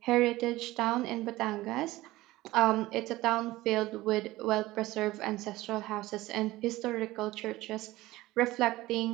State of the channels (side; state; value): left; quieter; 18.0 dB